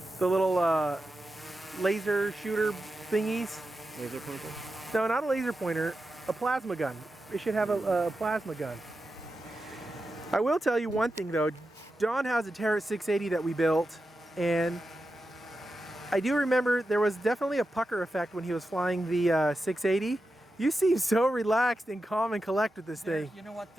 The little laser shooter thingies. Laser pointer? No, not a laser pointer, a plasma gun. It should have a plasma gun. I will tell you one thing though, Don has a Terra 680 that we built, and I do remember there was definitely a pucker effect when he was flying the 680. You seem so relaxed and calm and collect with this thing. You know what?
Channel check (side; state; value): both; normal; correlation 0.90